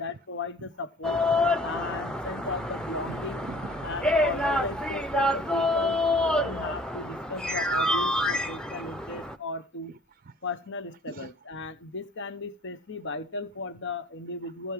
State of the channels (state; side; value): normal; both; correlation 0.51